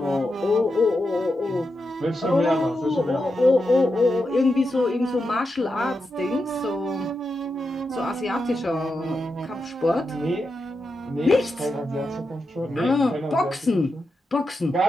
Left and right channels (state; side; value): normal; both; correlation 0.88